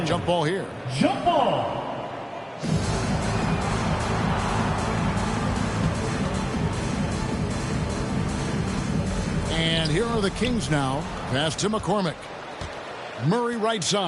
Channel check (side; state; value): both; identical; correlation 1.00